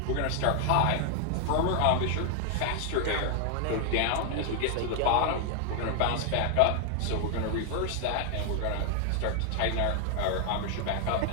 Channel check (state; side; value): different; both; correlation 0.00